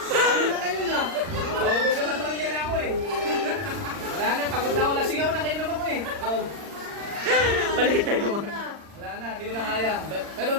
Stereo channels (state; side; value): late; left; 40 ms